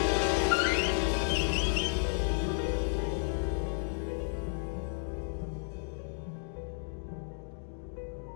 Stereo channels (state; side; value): silent; right; digital silence